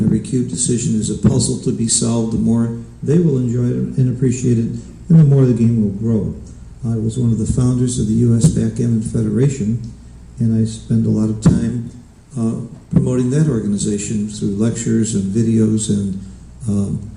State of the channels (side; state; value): both; identical; correlation 1.00